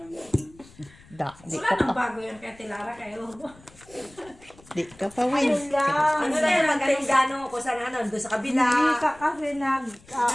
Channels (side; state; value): left; noise; rumble, 25 dB below the sound